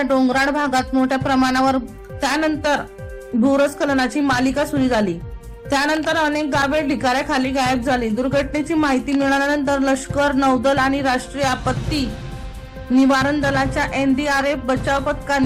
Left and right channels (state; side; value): identical; both; correlation 1.00